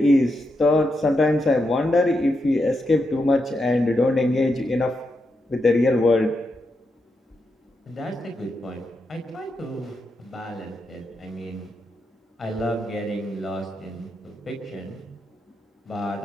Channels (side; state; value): both; normal; correlation 0.84